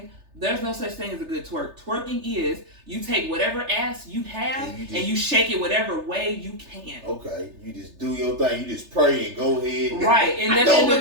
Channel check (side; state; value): left; late; 3.3 ms